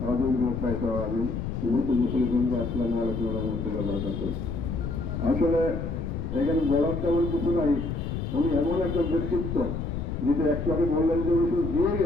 রহিম। আসলে এখানে বলার তেমন কিছু নাই। উনি এমন একটা ব্যক্তিত্ব যেটা একটু আগে বললেন যে উনি শুধু দিয়ে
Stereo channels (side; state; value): left; noise; rumble, 4 dB below the sound